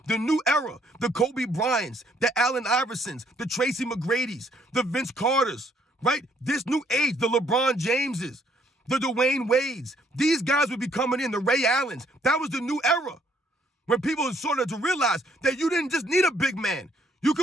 The new era, the Kobe Bryants, the Allen Iversons, the Tracy McGrady's, the Vince Carters, right? This new age, the LeBron Jameses, the Dwayne Wades. These guys would be coming in, the Ray Allens. That was the new era, when people started to realize that you didn't just need a big man. You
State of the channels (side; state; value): both; normal; correlation 0.67